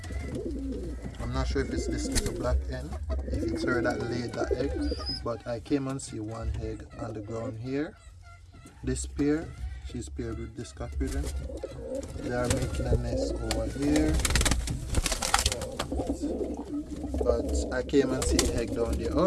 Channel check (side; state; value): both; identical; correlation 1.00